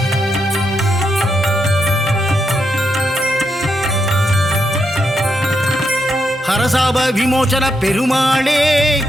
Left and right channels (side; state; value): both; normal; correlation 0.81